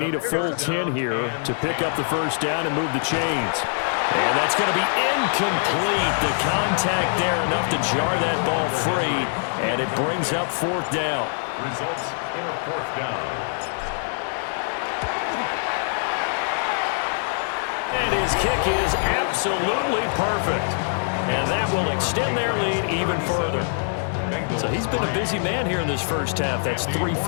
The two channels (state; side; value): silent; right; 63 dB below the other